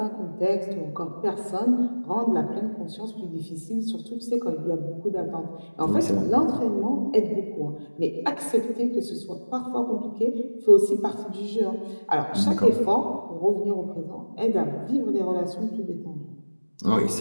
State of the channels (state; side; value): inverted; both; correlation -1.00